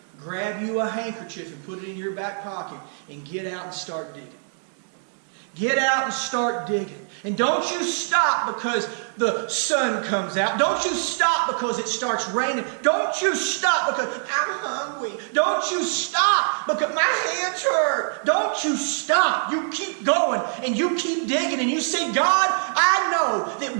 Grab you a handkerchief and put it in your back pocket and get out and start digging. Get out and start digging. And don't you stop because the sun comes out. Don't you stop because it starts raining. Don't you stop because I'm hungry. Don't you stop because my hands hurt. Don't you stop. You keep going and you keep digging and you say, God, I know that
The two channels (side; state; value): left; silent; digital silence